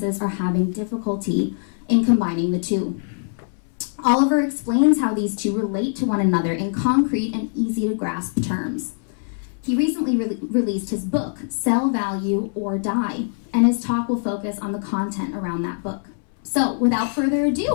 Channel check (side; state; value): right; silent; 64 dB below the other